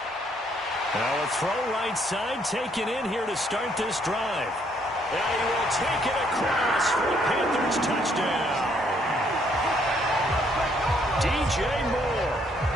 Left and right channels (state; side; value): normal; both; correlation 0.68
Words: Now a throw right side taken in here to start this drive. And he will take it across for a Panthers touchdown. DJ